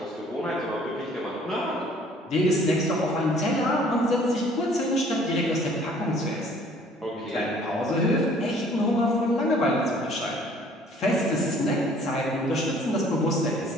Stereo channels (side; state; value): both; normal; correlation 0.56